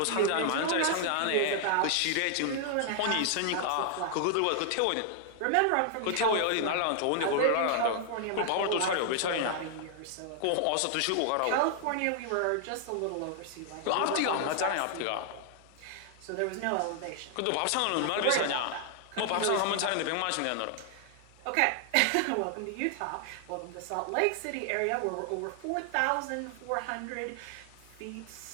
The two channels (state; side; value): different; both; correlation 0.00